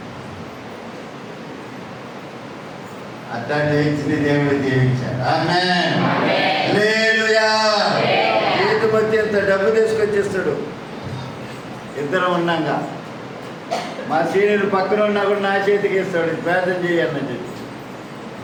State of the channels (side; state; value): both; identical; correlation 1.00